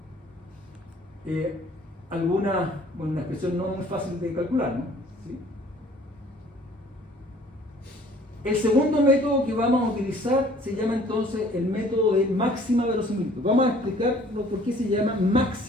una expresión no muy fácil de calcular, ¿no? ¿Sí? El segundo método que vamos a utilizar se llama entonces el método de máxima verosimilitud. Vamos a explicar por qué se llama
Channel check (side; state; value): both; normal; correlation 0.55